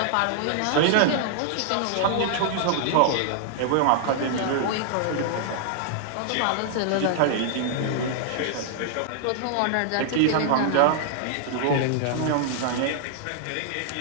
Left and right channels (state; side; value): different; both; correlation -0.01